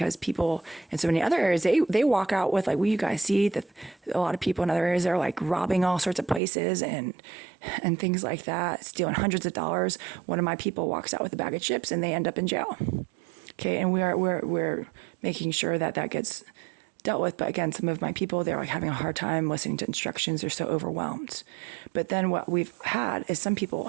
people in so many other areas, they walk out with like, well, you guys see that a lot of people in other areas are like robbing all sorts of places and things like that, stealing hundreds of dollars. One of my people walks out with a bag of chips and they end up in jail. Okay. And we're making sure that gets dealt with. But again, some of my people, they're like having a hard time listening to instructions. They're so overwhelmed. But then what we've had is some people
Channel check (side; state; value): left; drops out; at 6.4 s